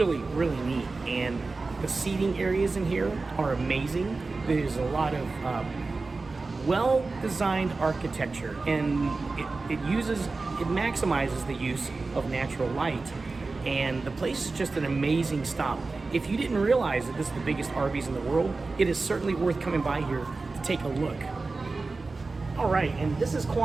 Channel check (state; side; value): quieter; left; 3.8 dB